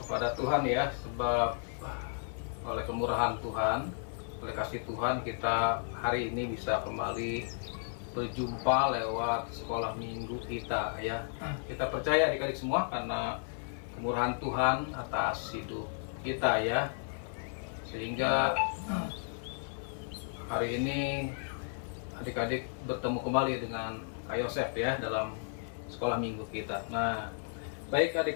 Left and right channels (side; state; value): right; silent; 55 dB below the other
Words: kepada Tuhan ya, sebab oleh kemurahan Tuhan, oleh kasih Tuhan, kita hari ini bisa kembali berjumpa lewat sekolah minggu kita ya. Kita percaya adik-adik semua karena kemurahan Tuhan atas hidup kita ya, sehingga hari ini adik-adik bertemu kembali dengan Kak Yosef ya dalam sekolah minggu kita. Nah, baik